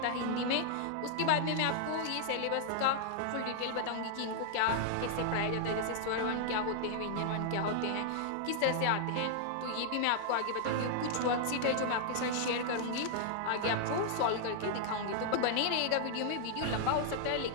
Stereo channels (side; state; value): both; different; correlation -0.01